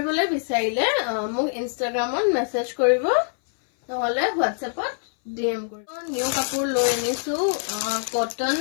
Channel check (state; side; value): silent; right; 61 dB below the other